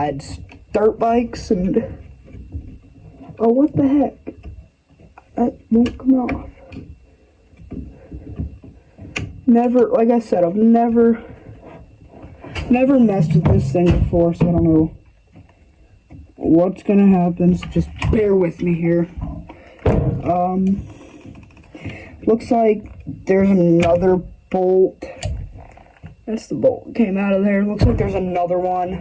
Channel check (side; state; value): both; identical; correlation 1.00